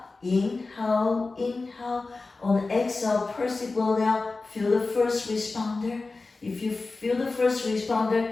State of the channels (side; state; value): right; quieter; 3.7 dB